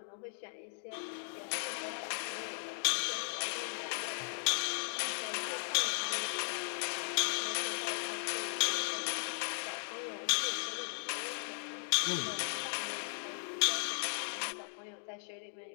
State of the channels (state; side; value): silent; right; digital silence